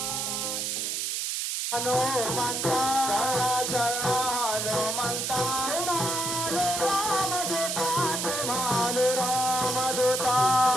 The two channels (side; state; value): right; noise; hiss, 1 dB below the sound